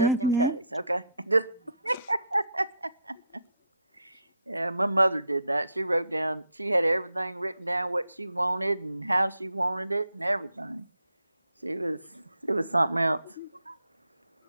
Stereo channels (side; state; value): both; inverted; correlation -0.74